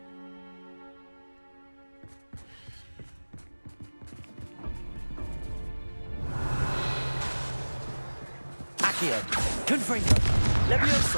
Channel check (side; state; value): both; inverted; correlation -1.00